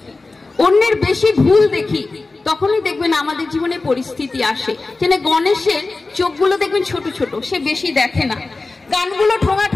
অন্যের বেশি ভুল দেখি, তখনই দেখবেন আমাদের জীবনে পরিস্থিতি আসে। যেন গণেশের চোখগুলো দেখবেন ছোট ছোট, সে বেশি দেখে না। কানগুলো ঠোঙা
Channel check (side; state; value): right; quieter; 3.5 dB